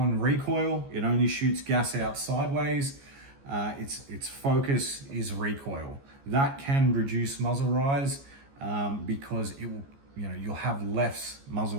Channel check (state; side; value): late; left; 14 ms